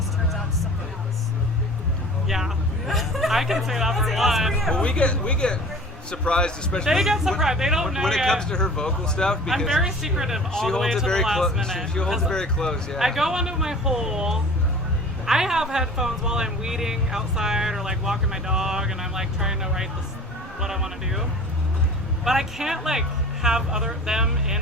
turns out to something else? Yeah. I can say that for one. Well, we get surprised, especially They get surprised. They don't know when it yet. comes to her vocal stuff. Because I'm very secretive all the way to the last minute. She holds it very close. Yeah. I go into my hole. I have headphones while I'm weeding outside or like walking my dog, and I'm like trying to write this what I want to do. But I can't like have them in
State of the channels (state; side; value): normal; both; correlation 0.42